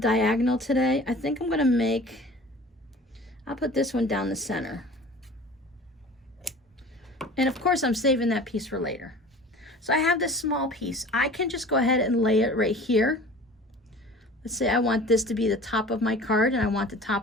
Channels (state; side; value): normal; both; correlation 0.43